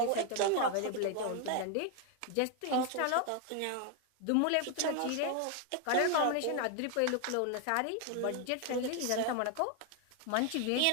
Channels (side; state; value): both; different; correlation 0.00